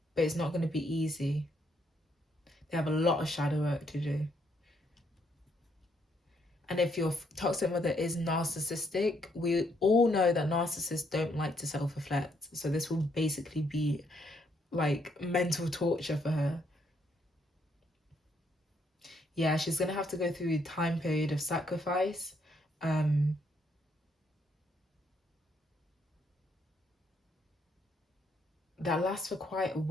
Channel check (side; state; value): both; normal; correlation 0.73